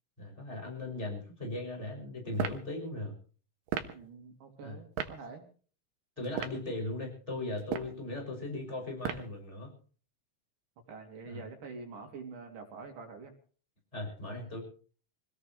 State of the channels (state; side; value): late; left; 6.3 ms